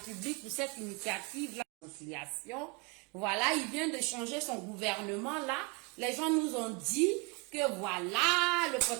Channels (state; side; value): quieter; left; 29.3 dB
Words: pour cette initiative, la réconciliation. Voilà, il vient de changer son gouvernement là. Les gens nous ont dit que voilà, le